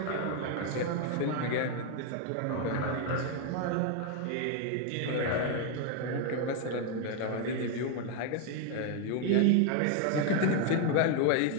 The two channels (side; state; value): both; different; correlation 0.01